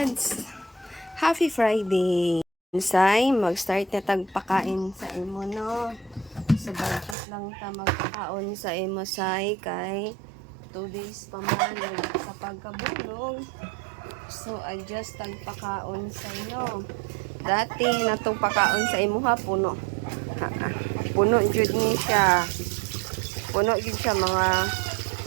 Happy Friday. Ensay, mag-start na tagpakain sa imo, no? So, budget lang ta magpakaon sa imo, say, kay 2 days pa man sa pagkabulog. So, adjust tagpakaon sa inyo. Dati, natong pakaon sa imo ha, puno. Puno jud ni siya. Puno jud siya, mga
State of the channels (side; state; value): left; drops out; at 7.2 s